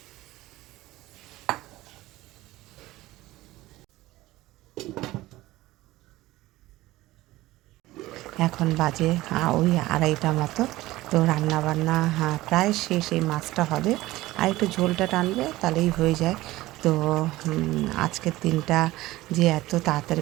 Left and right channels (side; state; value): left; quieter; 17.7 dB